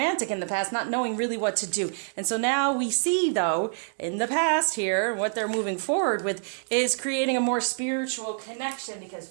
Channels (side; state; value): left; silent; 60 dB below the other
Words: in the past, not knowing really what to do. And so now we see, though, in the past here, what they're moving forward with is creating a more spiritual connection, because